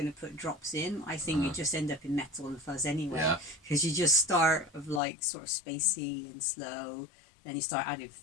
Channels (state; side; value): drops out; right; at 5.0 s